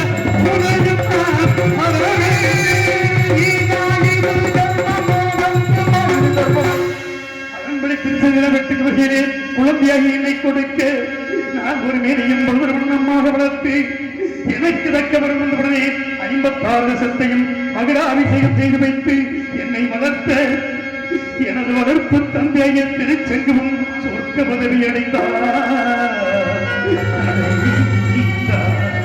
குழந்தையாகி என்னை கொடுக்க நான் ஒரு மேலையும் வண்ணமாக வளர்த்து எனக்கு தக்க வருடனே 56 லட்சத்தையும் மகராபிஷேகம் செய்து வைத்து என்னை வளர்த்த எனது வளர்ப்பு தந்தைய திருச்செங்கும் சொர்க்க பதவி அடைந்தார்.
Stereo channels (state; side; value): identical; both; correlation 1.00